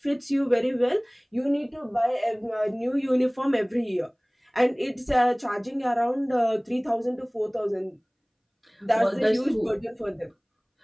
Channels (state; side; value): identical; both; correlation 1.00